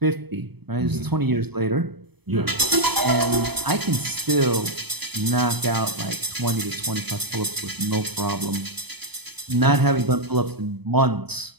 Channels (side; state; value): left; late; 0.98 ms